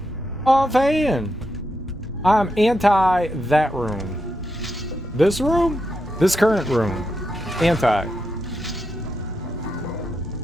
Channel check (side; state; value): both; normal; correlation 0.84